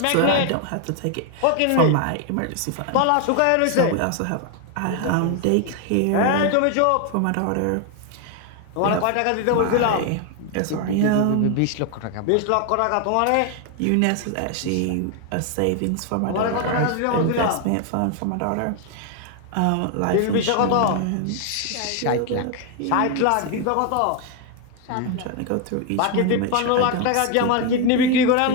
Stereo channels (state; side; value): different; both; correlation 0.01